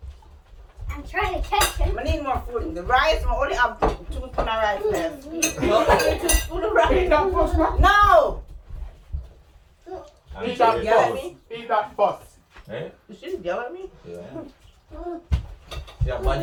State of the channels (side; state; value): both; identical; correlation 1.00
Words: I'm trying to catch him. I need more food. The rice, I only have 2 spoons of rice left. 2 spoons of Eat rice. that first, man. No! And Eat that she- yell at first. me? Eat that first. Eh? You shouldn't yell at me. Yeah. Yeah, man,